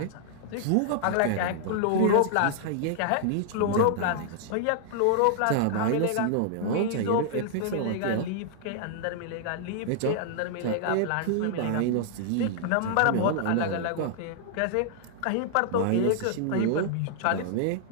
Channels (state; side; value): different; both; correlation -0.01